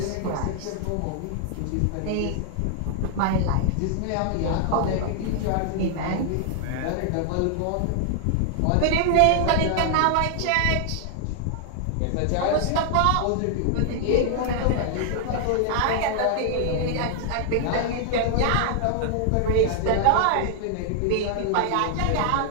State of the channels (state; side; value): different; both; correlation 0.00